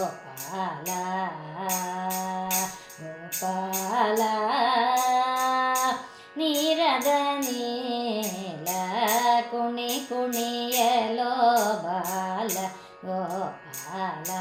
ಗೋಪಾಲ, ನೀರದ ನೀಲ ಕುಣಿ ಕುಣಿಯಲೋ ಬಾಲ ಗೋಪಾಲ.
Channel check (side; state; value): both; identical; correlation 1.00